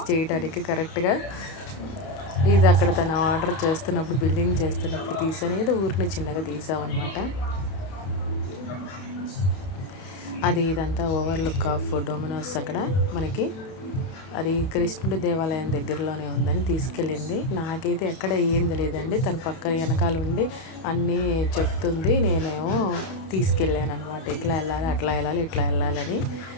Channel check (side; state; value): right; late; 32 ms